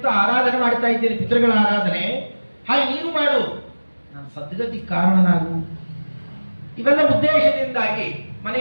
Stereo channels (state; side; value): inverted; both; correlation -1.00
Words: ಆರಾಧನೆ ಮಾಡ್ತಾ ಇದ್ದೇನೆ, ಪಿತೃಗಳ ಆರಾಧನೆ, ಹಾಗೆ ನೀನು ಮಾಡು, ನಾನು ಸದ್ಗತಿ ಕಾರಣನಾಗು. ಇವೆಲ್ಲ ಉದ್ದೇಶದಿಂದಾಗಿ